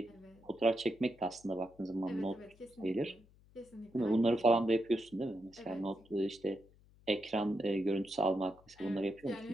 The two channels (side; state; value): left; noise; hum, 27 dB below the sound